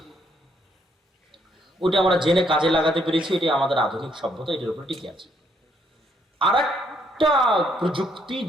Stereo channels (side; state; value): both; normal; correlation 0.72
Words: ওটা আমরা জেনে কাজে লাগাতে পেরেছি, এটি আমাদের আধুনিক সভ্যতা, এটার উপর টিকে আছে। আর একটা প্রযুক্তি